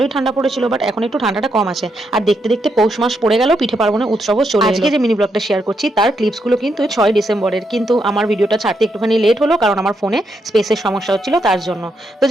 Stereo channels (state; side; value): normal; both; correlation 0.80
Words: ঠান্ডা পড়েছিল, বাট এখন একটু ঠান্ডাটা কম আছে। আর দেখতে দেখতে পৌষ মাস পড়ে গেল, পিঠে পার্বণের উৎসবও চলে এলো। আজকে যে মিনি ব্লগটা শেয়ার করছি তার ক্লিপসগুলো কিন্তু 6 ডিসেম্বরের, কিন্তু আমার ভিডিওটা ছাড়তে একটুখানি লেট হলো, কারণ আমার ফোনে স্পেসের সমস্যা হচ্ছিল তার জন্য। তো